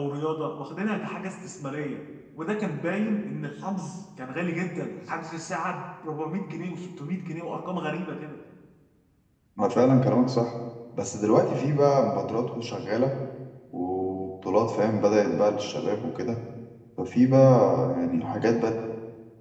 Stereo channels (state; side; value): identical; both; correlation 1.00